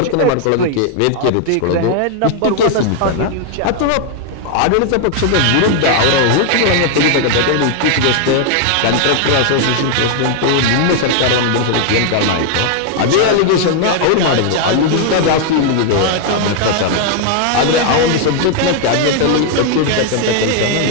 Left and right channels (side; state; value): both; different; correlation 0.00